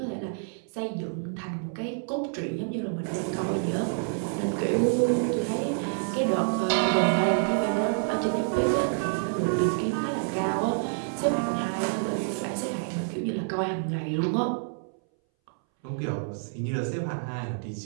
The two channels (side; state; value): left; silent; 59 dB below the other